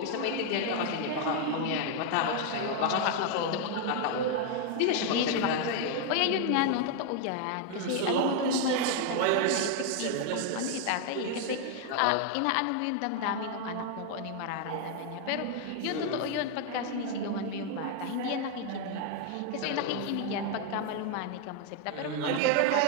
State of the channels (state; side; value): different; both; correlation 0.01